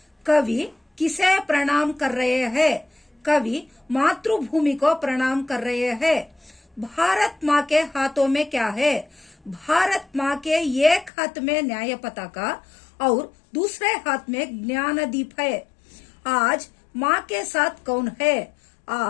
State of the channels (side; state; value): right; drops out; at 11.1 s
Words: कवि किसे प्रणाम कर रहे हैं? कवि मातृभूमि को प्रणाम कर रहे हैं. भारत माँ के हाथों में क्या है? भारत माँ के एक हाथ में न्याय पताका और दूसरे हाथ में ज्ञानदीप है. आज माँ के साथ कौन है?